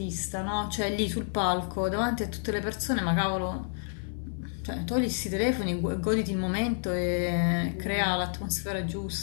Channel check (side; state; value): right; silent; digital silence